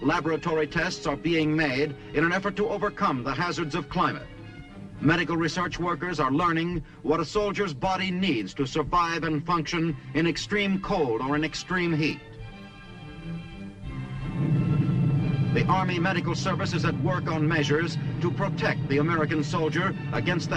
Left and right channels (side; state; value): both; identical; correlation 1.00